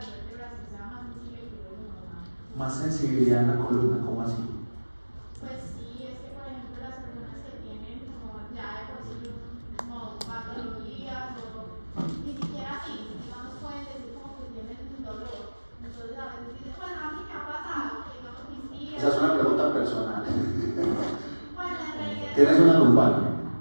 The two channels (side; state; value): both; inverted; correlation -1.00